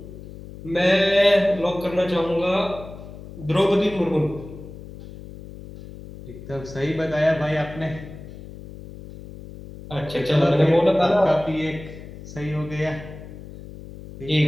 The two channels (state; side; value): noise; left; hum, 15 dB below the sound